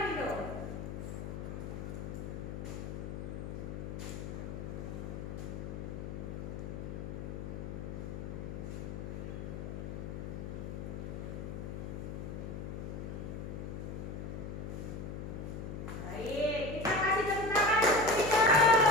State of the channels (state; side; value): noise; left; hum, 6 dB below the sound